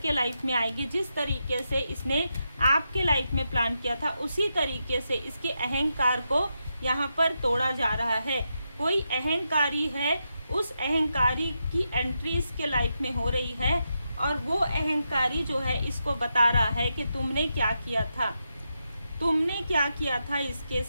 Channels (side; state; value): both; inverted; correlation -0.85